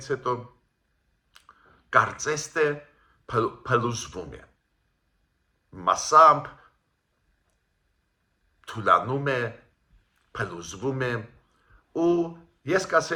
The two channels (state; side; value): identical; both; correlation 1.00